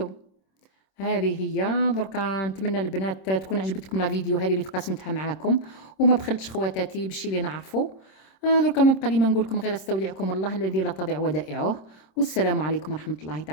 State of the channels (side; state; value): right; late; 26 ms